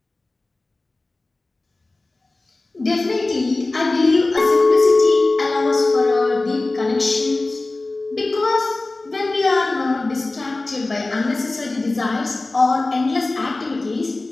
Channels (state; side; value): quieter; right; 3.1 dB